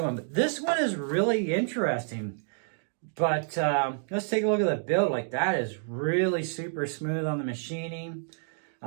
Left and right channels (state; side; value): silent; left; digital silence